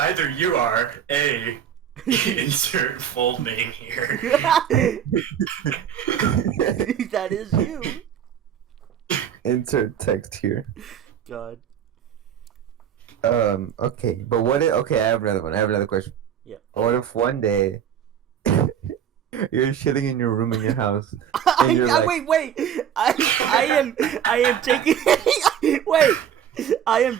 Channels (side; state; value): left; quieter; 9.1 dB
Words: you are A, insert full name here. That is you. Insert text here. God. Okay, but what if, okay, I have another one. I have another question. Yeah. What if one day you're shitting in your room in your house and you're like, wait. I am taking wait. I am